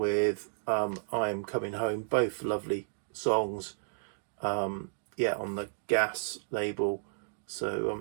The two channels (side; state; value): left; silent; digital silence